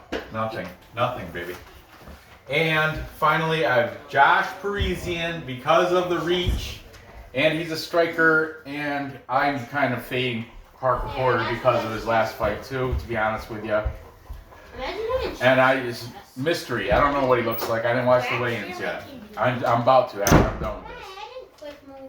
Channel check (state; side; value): identical; both; correlation 1.00